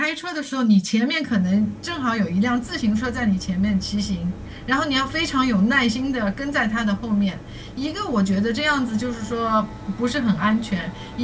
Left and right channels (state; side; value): identical; both; correlation 1.00